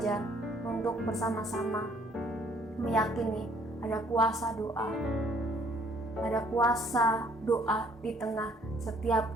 untuk bersama-sama meyakini ada kuasa doa. Ada kuasa doa di tengah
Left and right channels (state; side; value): normal; both; correlation 0.62